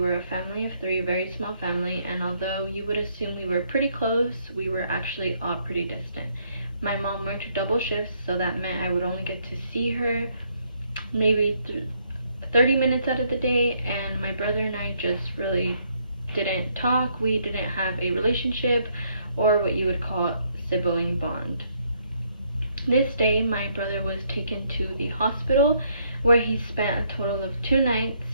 a family of 3, very small family, and although you would assume we were pretty close, we were actually all pretty distant. My mom worked double shifts, so that meant I would only get to see her maybe 30 minutes out of the day, and my brother and I just really didn't talk. We didn't have a relationship or what you would call sibling bond. This day, my brother was taken to the hospital where he spent a total of 2 nights,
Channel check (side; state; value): both; inverted; correlation -0.71